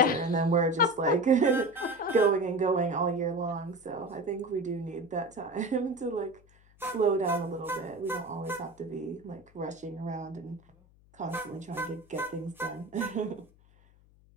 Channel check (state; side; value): noise; left; hum, 28 dB below the sound